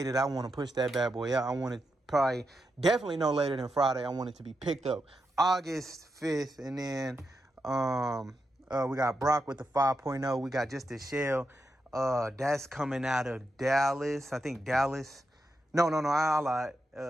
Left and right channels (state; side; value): normal; both; correlation 0.86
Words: that I want to push that bad boy out. I want it definitely no later than Friday. I want it to be picked up August 5th, and then we got Brock with the 5.0. We got just the shell. That's coming out of Dallas. I think Dallas. No, I lied.